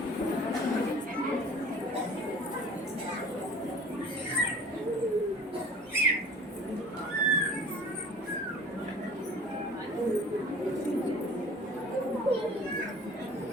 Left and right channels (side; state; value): both; normal; correlation 0.45